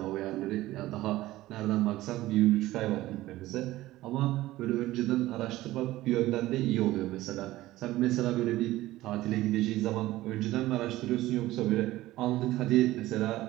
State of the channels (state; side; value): quieter; left; 16.6 dB